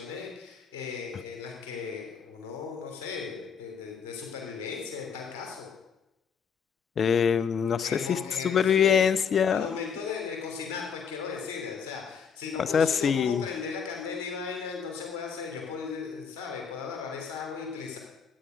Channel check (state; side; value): quieter; right; 6.8 dB